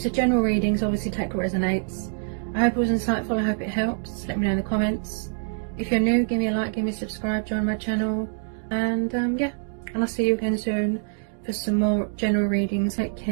a general reading. So obviously, take what resonates. I hope it was insightful. I hope it helps. Let me know in the comments. If you're new, give me a like, give me a subscribe, join my channel, and yeah, and I'll see you again soon for some more general readings. Take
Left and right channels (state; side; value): silent; left; 62 dB below the other